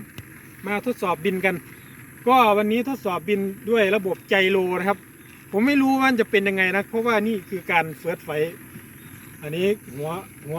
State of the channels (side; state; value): both; identical; correlation 1.00